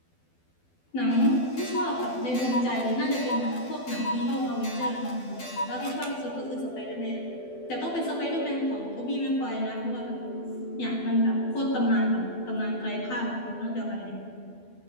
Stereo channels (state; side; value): late; right; 12 ms